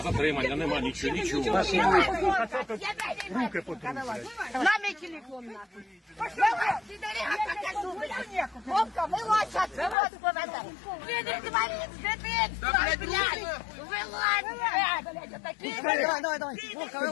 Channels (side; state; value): right; drops out; at 10.0 s